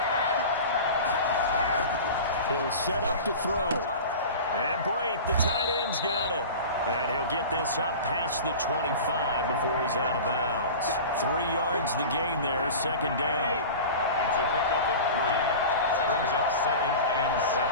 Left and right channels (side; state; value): both; inverted; correlation -0.34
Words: He'll set up to throw. And Brate, the tight end's got it. And he'll get this up past the 25 before he's out of bounds. 3 yards the gain there, 2nd down. It's a pickup of 3. Brings up 2nd and 7.